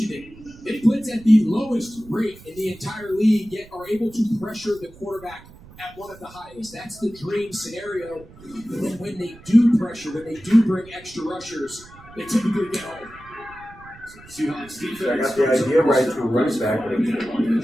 it. They blitz at the lowest rate in the entire league, yet are able to pressure the quarterback at one of the highest. That's the dream scenario. But then when they do pressure, when they do bring extra rushers, they typically get home. Seahawks defense. I got the idea right to running back.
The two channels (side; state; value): right; noise; rumble, 21 dB below the sound